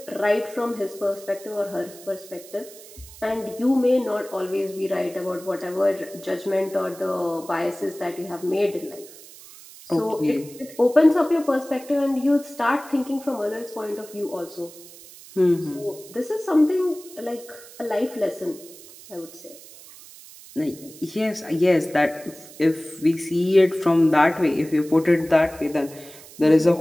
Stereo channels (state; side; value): noise; right; hiss, 19 dB below the sound